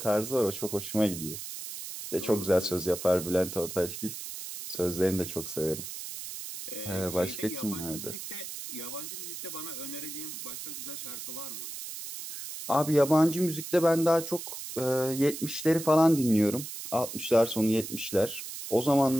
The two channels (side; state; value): right; noise; hiss, 9 dB below the sound